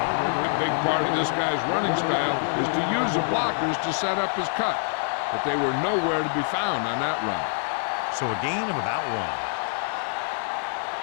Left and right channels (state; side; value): silent; right; digital silence